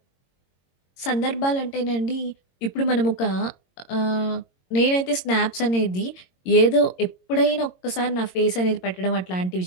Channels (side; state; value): right; late; 22 ms